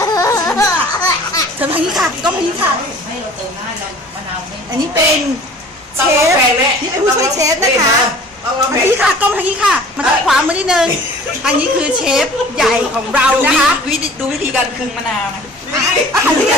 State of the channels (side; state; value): both; normal; correlation 0.47